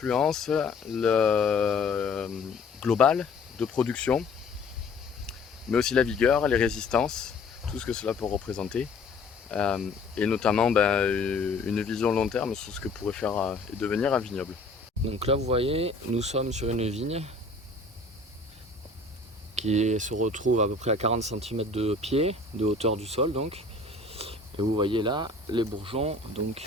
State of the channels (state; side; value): quieter; right; 3.5 dB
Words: globale de production, mais aussi la vigueur, les résistances, tout ce que cela peut représenter. Et notamment une vision long terme sur ce que pourrait faire et devenir un vignoble. Donc là vous voyez, nous sommes sur une vigne qui se retrouve à peu près à 40 cm de pied, de hauteur du sol donc. Et vous voyez là les bourgeons, donc